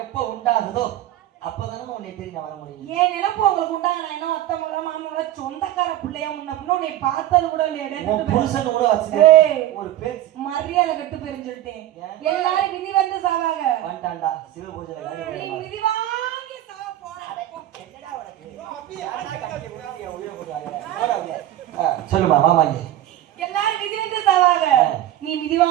எப்ப உண்டாகுதோ அப்பதானே உன்னை தெரியும் வர முடியும். ஏன் நினைப்பு உங்களுக்கு உண்டாக? நான் என்ன ஒத்தமோட மாமோட சொந்தக்கார பிள்ளையா முன்ன உன்னை பார்த்தது கூட இல்லையா? புருஷன் கூட வச்சு ஒரு பேச்சு மரியாதை கட்டு போயிருன்னு சொல்லிட்டேன். எல்லாரும் விதி வந்து சாவாங்க. வந்துட்டான்டா சிவ பூஜை விதி வாங்கி சாவ போற. சொல்லுமா மாமாங்க, எல்லாரும் விதி வந்து சாவாங்க, நீ விதி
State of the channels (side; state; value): left; quieter; 13.2 dB